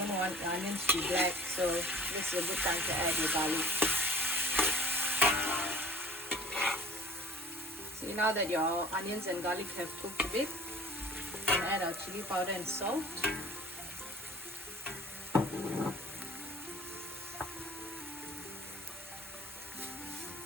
want the onions to be black, so this is a good time to add your garlic. See, now that your onions and garlic have cooked a bit, we can add our chili powder and salt.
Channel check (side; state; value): both; normal; correlation 0.47